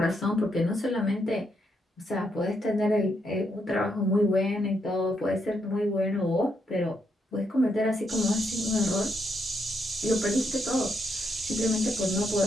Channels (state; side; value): normal; both; correlation 0.78